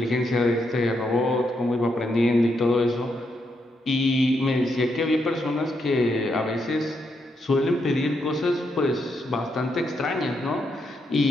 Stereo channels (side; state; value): both; normal; correlation 0.80